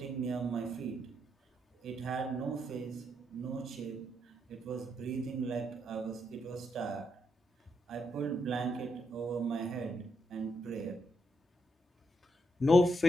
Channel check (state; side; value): normal; both; correlation 0.80